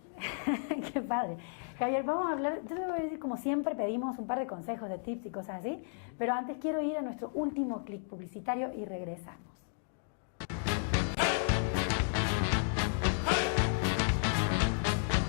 Qué padre. Javier, vamos a hablar, yo te voy a decir, como siempre pedimos un par de consejos, de tips y cosas así, pero antes quiero ir a nuestro último clic publicitario y regresamos.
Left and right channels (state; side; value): silent; right; digital silence